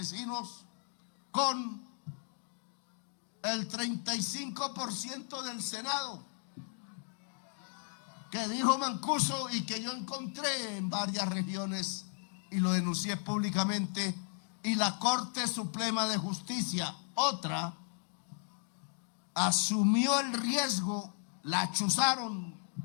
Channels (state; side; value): silent; right; 54 dB below the other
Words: con el 35% del Senado, que dijo Mancuso y que yo encontré en varias regiones y lo denuncié públicamente, y la Corte Suprema de Justicia, otra, asumió el riesgo, la chuzaron,